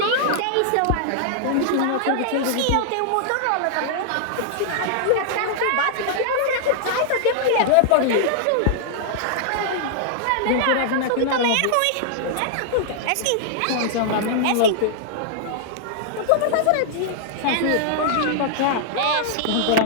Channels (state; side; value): different; both; correlation -0.01